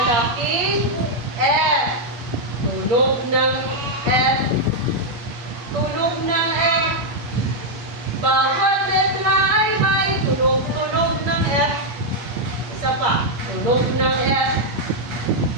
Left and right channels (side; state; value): left; late; 8.5 ms